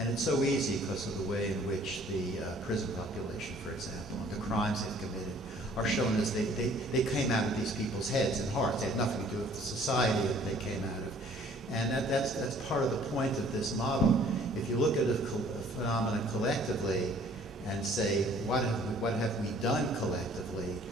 it's so easy because of the way in which the prison population, for example, and the crimes they've committed are shown as they came out of these people's heads and hearts. They had nothing to do with the society that they came out of. And that's part of the point of this model. If you look at a phenomenon collectively and say, what have we done collectively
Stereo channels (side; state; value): both; normal; correlation 0.56